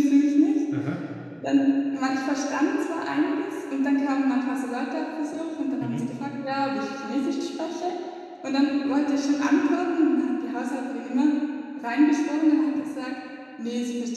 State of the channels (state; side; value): identical; both; correlation 1.00